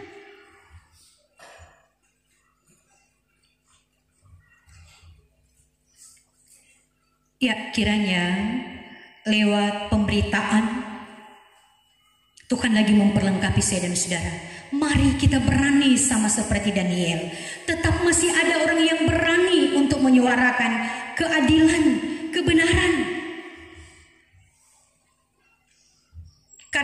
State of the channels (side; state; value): both; identical; correlation 1.00